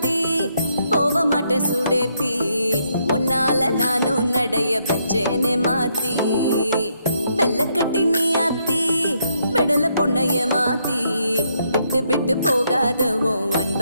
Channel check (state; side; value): inverted; both; correlation -0.75